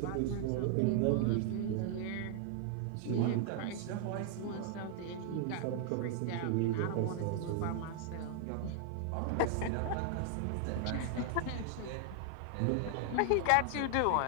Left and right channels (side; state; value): both; different; correlation 0.00